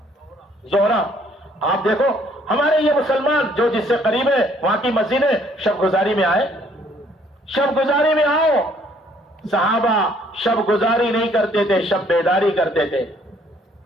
زہرا. آپ دیکھو ہمارے یہ مسلمان جو جس سے قریب ہے وہاں کی مسجد ہے, شب گزاری میں آئے, شب گزاری میں آؤ. صحابہ شب گزاری نہیں کرتے تھے، شب بیداری کرتے تھے.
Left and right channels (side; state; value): both; normal; correlation 0.63